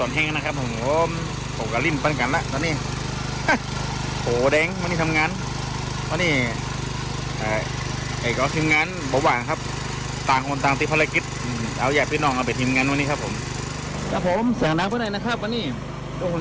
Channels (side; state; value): both; identical; correlation 1.00